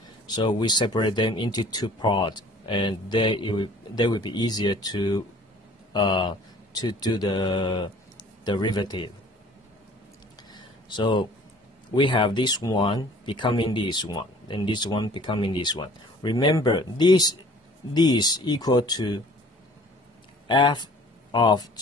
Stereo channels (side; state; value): both; normal; correlation 0.51